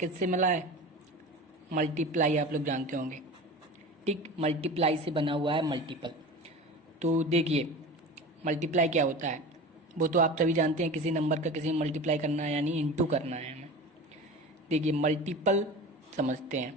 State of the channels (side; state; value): both; normal; correlation 0.33